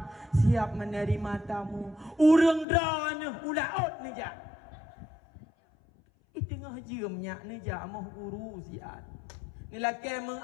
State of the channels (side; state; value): right; drops out; at 2.7 s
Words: Siap menerima tamu. Urang dah ni ulaut ni jak. Tengah jemnya ni jak amah guru siat. Ni laki